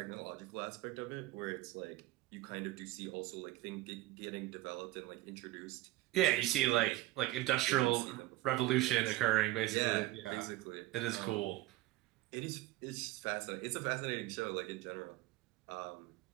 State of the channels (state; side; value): quieter; left; 17.1 dB